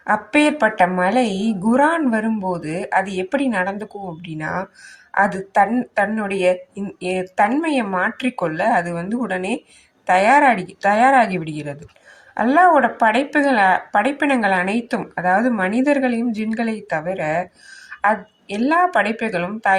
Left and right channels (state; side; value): identical; both; correlation 1.00